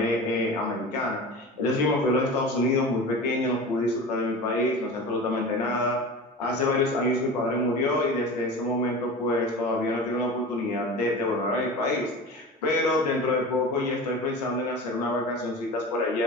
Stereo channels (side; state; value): both; normal; correlation 0.33